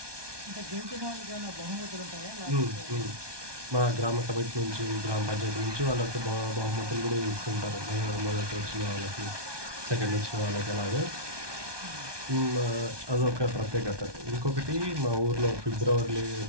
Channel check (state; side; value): late; left; 1.2 ms